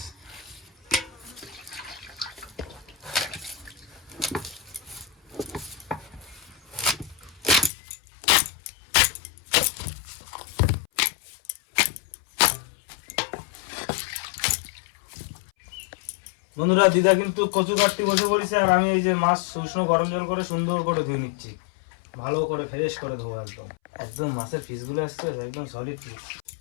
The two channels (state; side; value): drops out; right; at 7.7 s